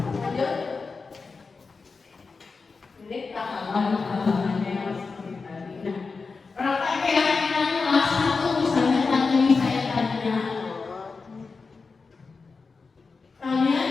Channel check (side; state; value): right; quieter; 4.5 dB